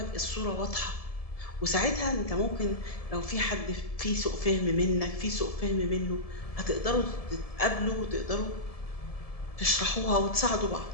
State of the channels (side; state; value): right; late; 1.7 ms